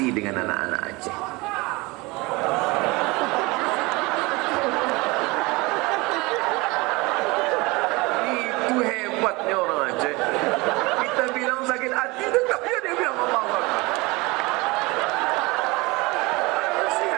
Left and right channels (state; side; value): quieter; left; 23.9 dB